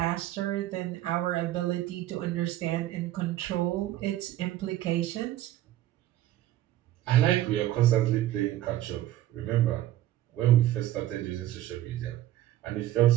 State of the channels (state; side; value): quieter; left; 13.9 dB